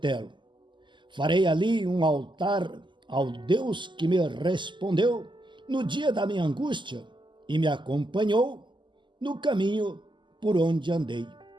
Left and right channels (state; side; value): late; left; 0.23 ms